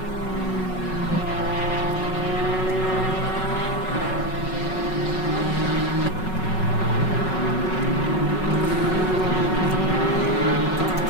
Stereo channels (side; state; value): right; late; 5.4 ms